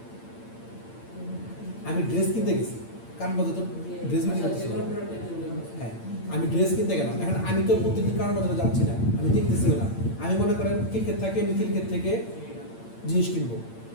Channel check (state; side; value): late; right; 8.8 ms